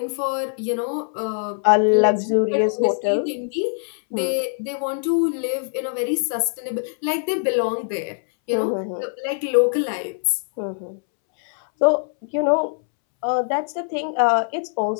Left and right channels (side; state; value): right; silent; 64 dB below the other